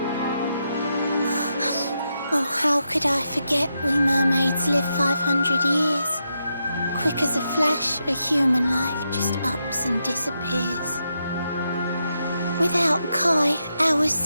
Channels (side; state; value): both; inverted; correlation -0.84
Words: Oh, how could I forget we mermaids live 500 years? Quick as a flash, a human life just ups and disappears. Without Kai, hours